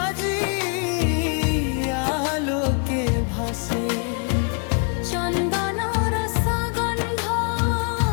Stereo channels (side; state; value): right; quieter; 37.5 dB